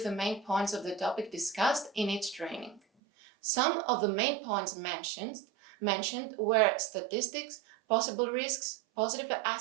the main points of the topic discussed in each training. Some of the main points mentioned were statistics, possible risks, positive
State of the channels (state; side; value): drops out; left; at 2.8 s